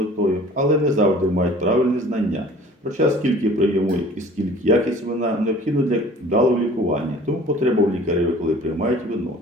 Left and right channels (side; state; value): both; normal; correlation 0.48